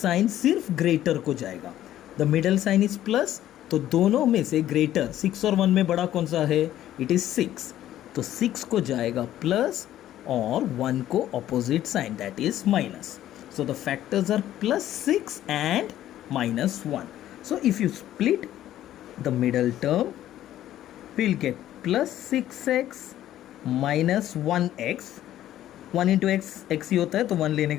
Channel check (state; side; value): quieter; right; 12.7 dB